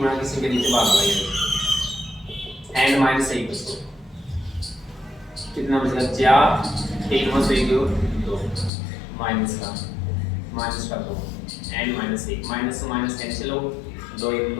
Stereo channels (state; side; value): drops out; right; at 8.7 s